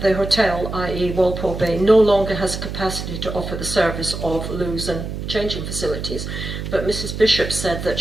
the hotel, i.e. Walpole Bay, no longer has capacity to offer the service of loos and changing facilities, but Mrs Bishop said that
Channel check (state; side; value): noise; right; hum, 6 dB below the sound